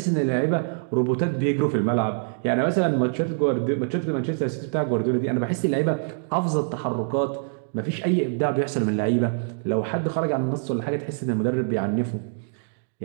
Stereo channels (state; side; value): silent; left; digital silence